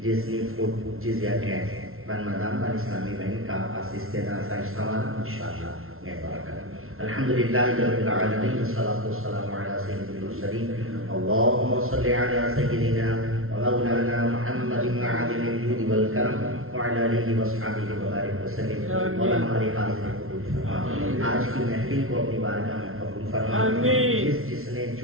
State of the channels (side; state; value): left; late; 0.62 ms